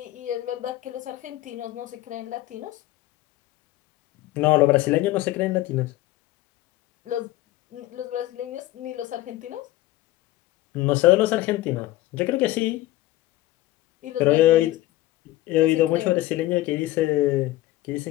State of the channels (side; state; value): right; quieter; 16.3 dB